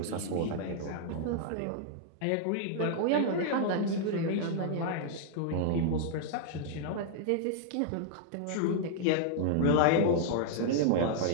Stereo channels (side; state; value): both; different; correlation -0.01